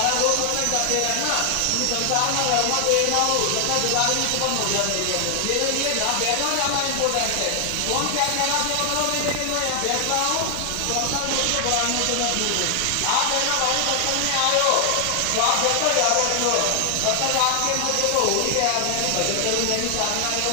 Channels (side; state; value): both; different; correlation 0.00